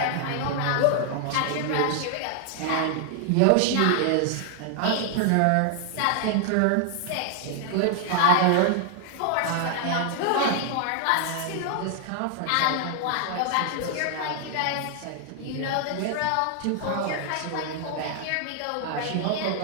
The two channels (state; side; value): different; both; correlation 0.00